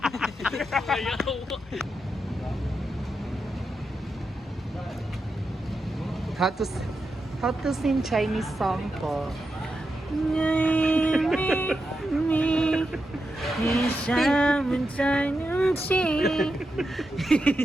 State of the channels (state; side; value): normal; both; correlation 0.87